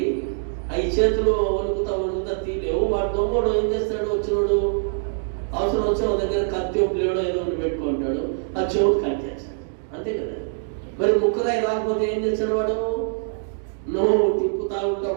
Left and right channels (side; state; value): left; silent; digital silence